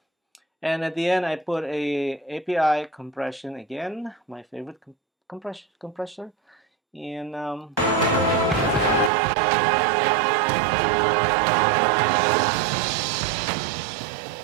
And at the end, I put a API compression again, my favorite compressor, and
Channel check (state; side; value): drops out; left; at 9.1 s